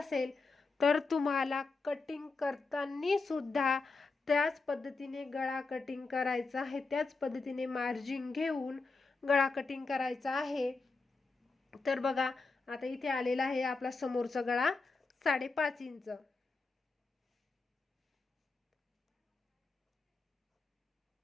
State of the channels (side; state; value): right; quieter; 3.9 dB